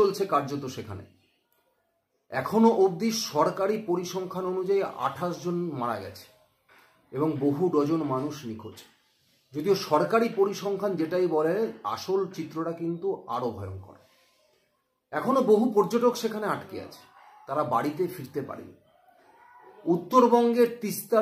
কার্যত সেখানে। এখনো অবধি সরকারি পরিসংখ্যান অনুযায়ী 28 জন মারা গেছে এবং বহু ডজন মানুষ নিখোঁজ। যদিও সরকারি পরিসংখ্যান যেটাই বলে, আসল চিত্রটা কিন্তু আরো ভয়ঙ্কর। এখনো বহু পর্যটক সেখানে আটকে আছে, তারা বাড়িতে ফিরতে পারেনি। উত্তরবঙ্গের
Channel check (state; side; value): identical; both; correlation 1.00